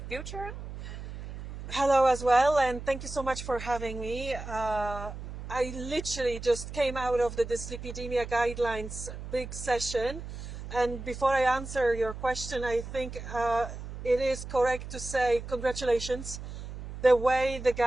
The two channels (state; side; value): noise; right; hum, 10 dB below the sound